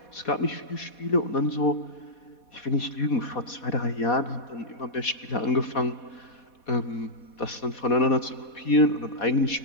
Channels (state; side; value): late; right; 4.2 ms